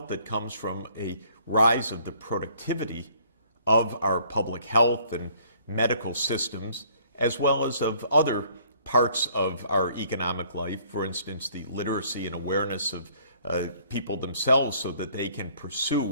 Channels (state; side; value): inverted; both; correlation -0.59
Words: that comes from a rise of the productivity of our public health and medical systems, as well as of other parts of our economic life, for instance, the literacy and awareness of people themselves so that they can